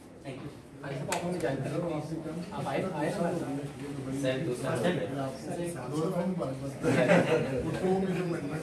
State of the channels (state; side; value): identical; both; correlation 1.00